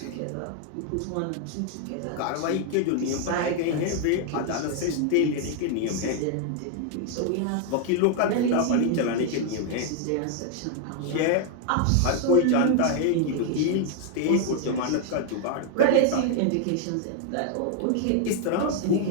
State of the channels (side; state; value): both; different; correlation 0.00